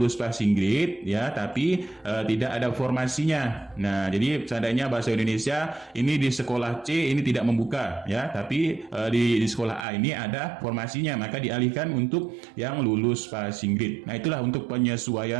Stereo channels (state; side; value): drops out; left; at 9.9 s